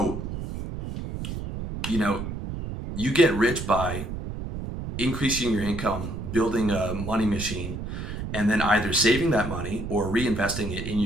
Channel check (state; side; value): noise; right; rumble, 6 dB below the sound